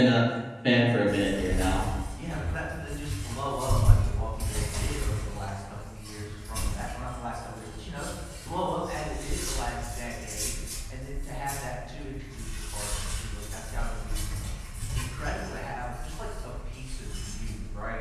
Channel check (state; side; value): identical; both; correlation 1.00